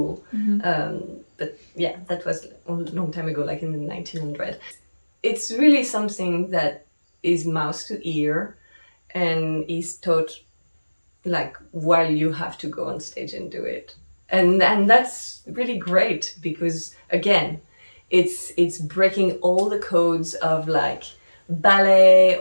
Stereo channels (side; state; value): both; inverted; correlation -1.00